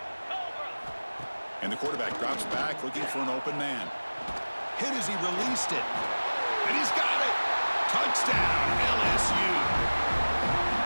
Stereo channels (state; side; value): inverted; both; correlation -1.00